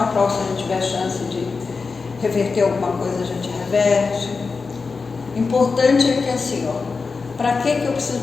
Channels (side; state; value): right; quieter; 4.6 dB